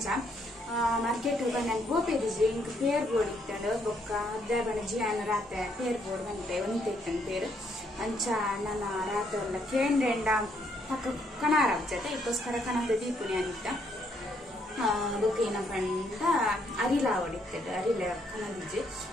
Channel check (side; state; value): both; normal; correlation 0.72